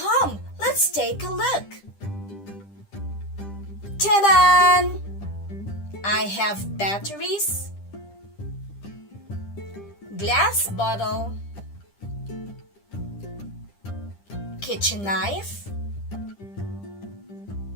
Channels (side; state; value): right; late; 10 ms